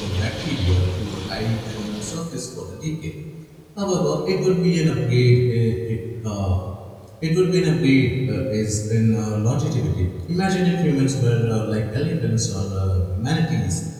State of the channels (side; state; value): both; identical; correlation 1.00